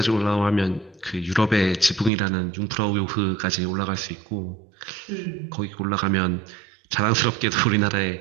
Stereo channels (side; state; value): left; drops out; at 2.1 s